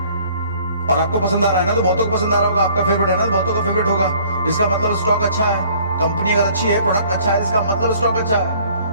और आपको पसंद आ रहा है ना, तो बहुतों को पसंद आ रहा होगा, आपका फेवरेट है ना, बहुतों का फेवरेट होगा, इसका मतलब स्टॉक अच्छा है। कंपनी अगर अच्छी है, प्रोडक्ट अच्छा है, इसका मतलब स्टॉक अच्छा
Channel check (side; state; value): both; inverted; correlation -0.56